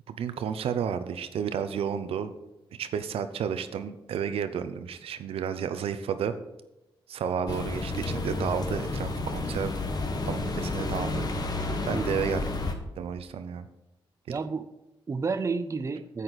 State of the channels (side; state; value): left; quieter; 3.2 dB